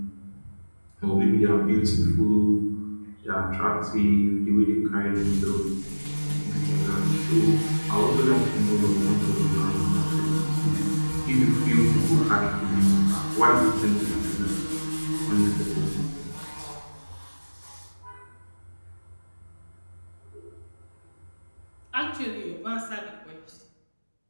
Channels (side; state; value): both; inverted; correlation -1.00